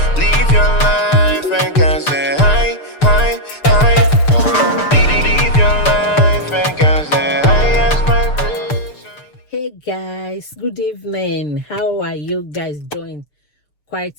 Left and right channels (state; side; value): late; right; 6.7 ms